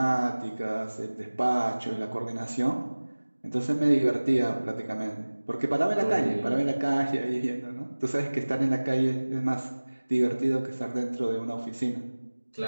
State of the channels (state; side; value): inverted; both; correlation -1.00